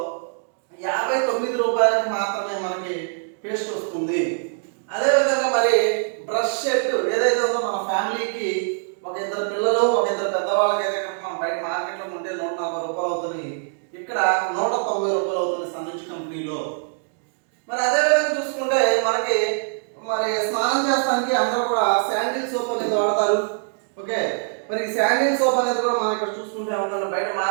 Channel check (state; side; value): silent; left; digital silence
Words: 59 రూపాయలకి మాత్రమే మనకి పేస్ట్ వస్తుంది. అదేవిధంగా మరి బ్రష్ సెట్ ఏదైతే ఉందో మన ఫ్యామిలీకి ఒక ఇద్దరు పిల్లలు ఒక ఇద్దరు పెద్దవాళ్ళకి అయితే మనం బయట మార్కెట్లో ఉంటే 140 రూపాయలు అవుతుంది. ఇక్కడ 190 రూపాయలు అవుతుంది సనెడ్జ్ కంపెనీలో. మరి అదేవిధంగా చూసుకుంటే మనకి మరి స్నానం చేస్తానికి అందరూ కూడా శాండిల్ సోప్ అనేది వాడతారు. ఓకే, మరి శాండిల్ సోప్ అనేది కూడా మనం ఇక్కడ చూసుకుంటే ఉందండి. బయట